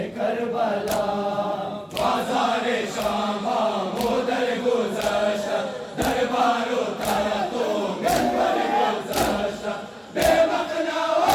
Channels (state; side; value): identical; both; correlation 1.00